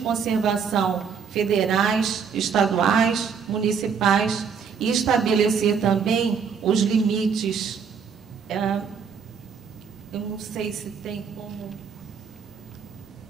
federais, estaduais, municipais e estabelecer também os limites. Eu não sei se tem como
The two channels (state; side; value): quieter; left; 6.4 dB